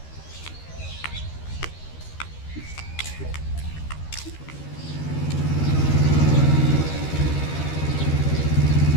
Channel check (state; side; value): late; right; 13 ms